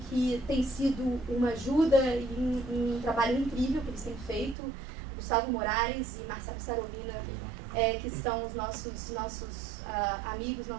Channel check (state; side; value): drops out; left; at 4.5 s